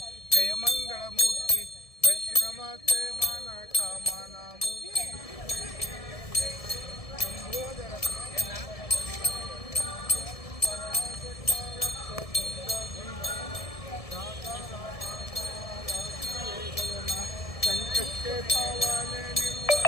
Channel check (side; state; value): right; late; 1.7 ms